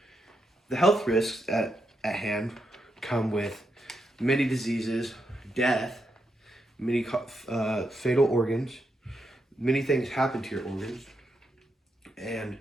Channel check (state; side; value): normal; both; correlation 0.83